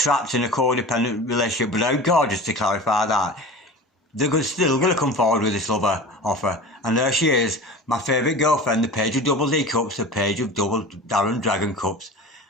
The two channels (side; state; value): both; normal; correlation 0.35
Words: in a codependent relationship, but how gorgeous to clarify that. They're still going to come forward with this lover offer. And there she is, my favourite girlfriend, the Page of Double D Cups, the Page of Double Darren Dragon Cups.